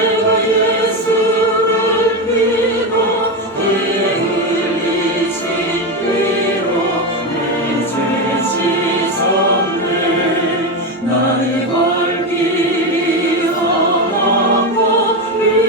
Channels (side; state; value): both; normal; correlation 0.14